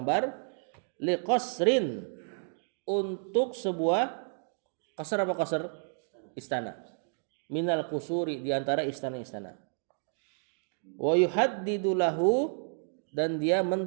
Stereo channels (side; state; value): left; silent; 57 dB below the other